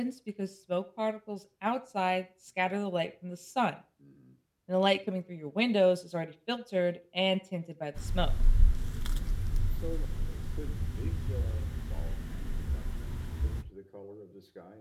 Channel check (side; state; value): both; identical; correlation 1.00